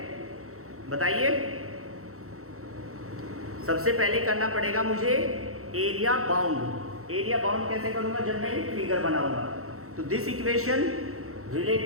बताइए। सबसे पहले करना पड़ेगा मुझे एरिया बाउंड। एरिया बाउंड कैसे करूंगा? जब मैं फिगर बनाऊंगा। तो this equation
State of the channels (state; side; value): late; left; 0.64 ms